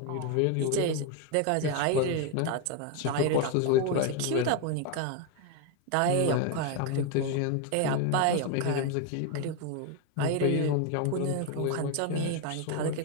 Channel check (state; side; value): different; both; correlation 0.02